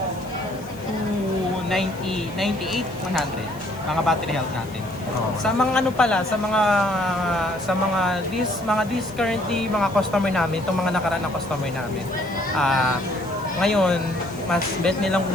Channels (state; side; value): noise; left; hiss, 23 dB below the sound